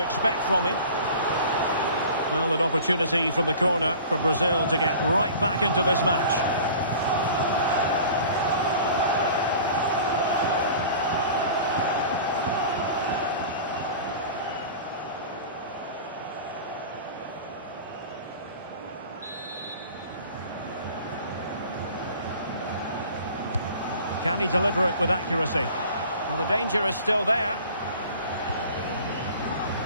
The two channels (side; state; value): both; inverted; correlation -0.43